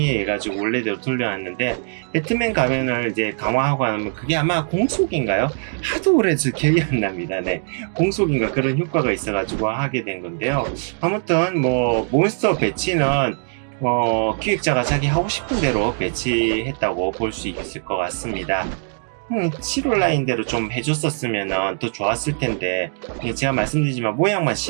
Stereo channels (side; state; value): left; silent; 65 dB below the other